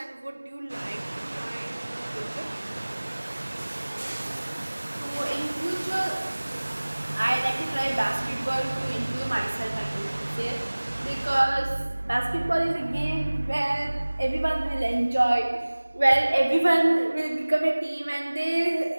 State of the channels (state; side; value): inverted; both; correlation -1.00